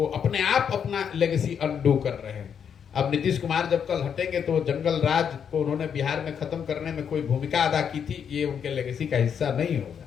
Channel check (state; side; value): quieter; right; 7.6 dB